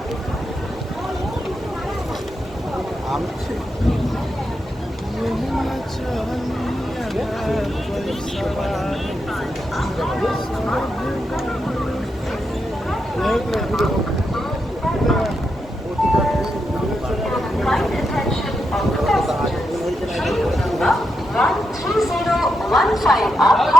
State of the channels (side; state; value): both; normal; correlation 0.84